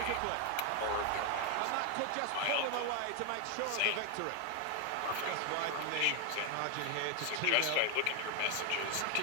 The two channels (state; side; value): different; both; correlation 0.00